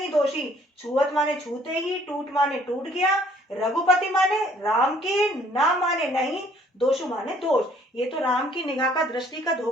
दोषी, छुअत माने छूते ही, टूट माने टूट गया, रघुपति माने राम के, ना माने नहीं, दोषु माने दोष। ये तो राम की निगाह का, दृष्टि का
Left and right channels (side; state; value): both; normal; correlation 0.60